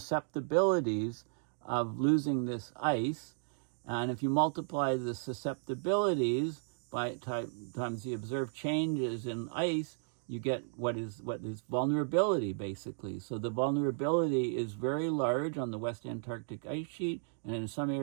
of losing this ice, and if you multiply the susceptibilities by times the observed changes in ice, you get what is vulnerability, basically. So the vulnerability is very large on the West Antarctic ice sheet and in some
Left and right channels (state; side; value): silent; left; digital silence